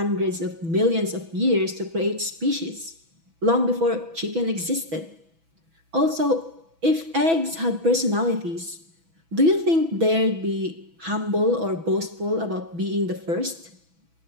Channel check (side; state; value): left; late; 6.1 ms